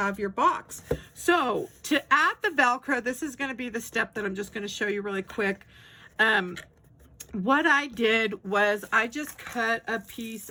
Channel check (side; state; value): both; identical; correlation 1.00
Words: your box. So to add the Velcro, this is going to be the step that I'm just going to show you really quick. What I did was I just cut a piece